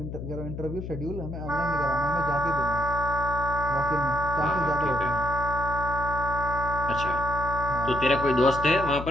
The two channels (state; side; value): noise; left; hum, 8 dB below the sound